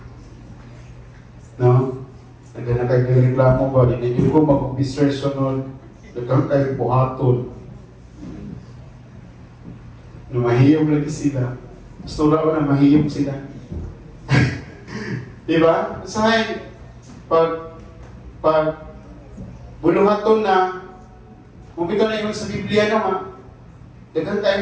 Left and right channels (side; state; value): both; identical; correlation 1.00